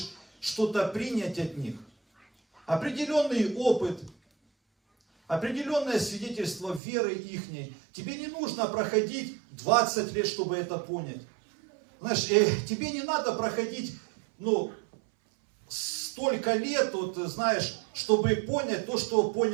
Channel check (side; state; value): left; drops out; at 6.8 s